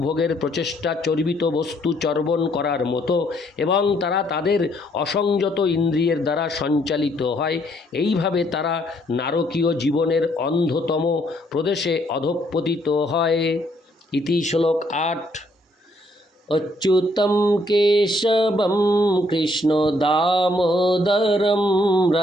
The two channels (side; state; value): both; normal; correlation 0.69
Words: ভোগের প্রচেষ্টা চর্বিত বস্তু চর্বণ করার মতো এবং তারা তাদের অসংযত ইন্দ্রিয়ের দ্বারা সঞ্চালিত হয়। এইভাবে তারা নারকীয় জীবনের অন্ধতম প্রদেশে অধঃপতিত হয়। ইতি শ্লোক 8। অচ্যুতম কেশবম কৃষ্ণ দামোদরম